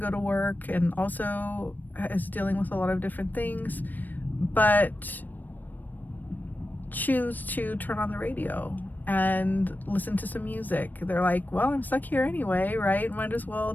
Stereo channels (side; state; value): right; late; 0.088 ms